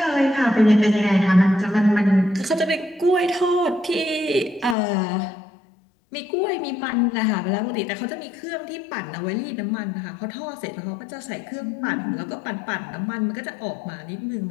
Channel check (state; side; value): drops out; right; at 4.8 s